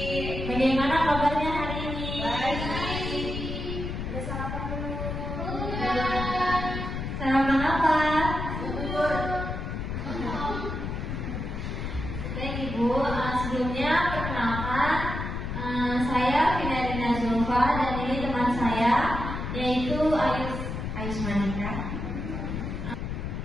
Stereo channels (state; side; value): noise; left; rumble, 5 dB below the sound